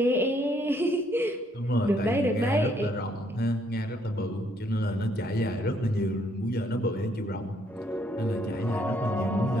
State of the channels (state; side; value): normal; both; correlation 0.69